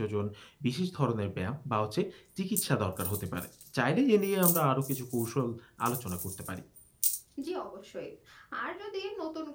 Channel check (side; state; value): both; identical; correlation 1.00